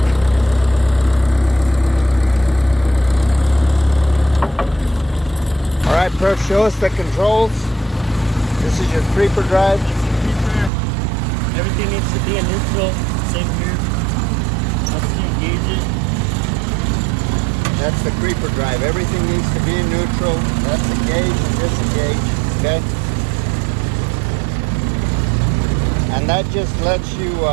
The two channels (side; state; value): left; drops out; at 10.7 s